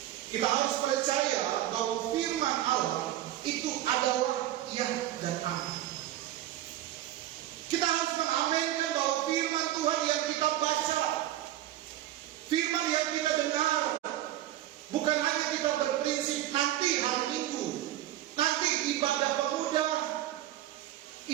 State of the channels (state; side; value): quieter; left; 13.5 dB